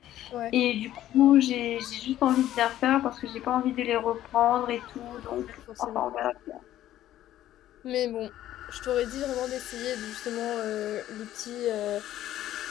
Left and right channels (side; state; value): right; quieter; 13.0 dB